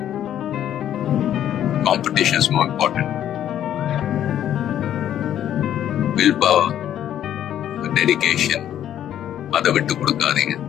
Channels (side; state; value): right; quieter; 10.9 dB